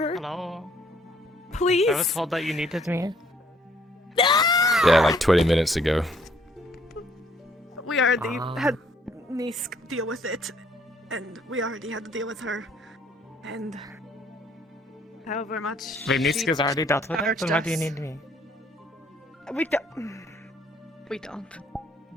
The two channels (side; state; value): both; normal; correlation 0.64